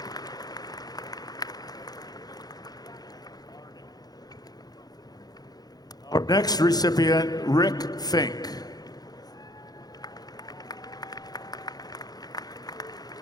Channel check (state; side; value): late; right; 0.19 ms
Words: Our next recipient, Rick Fink.